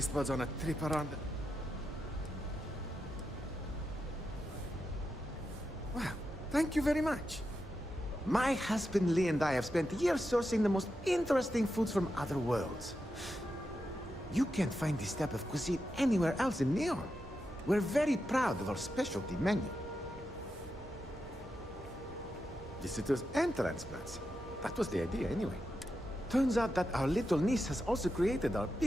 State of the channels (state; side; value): normal; both; correlation 0.87